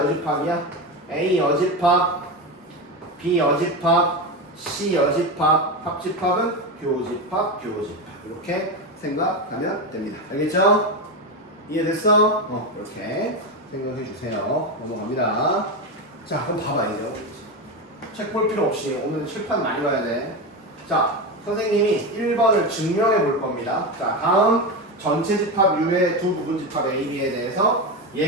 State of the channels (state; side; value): normal; both; correlation 0.17